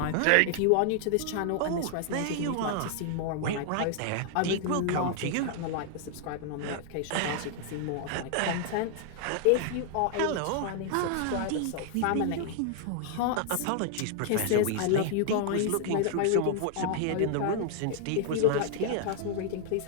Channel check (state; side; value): different; both; correlation 0.00